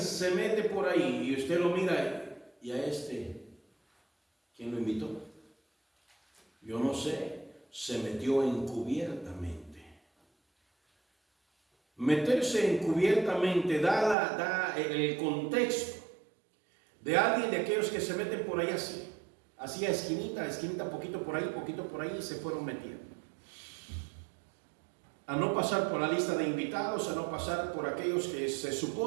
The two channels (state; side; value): drops out; left; at 14.2 s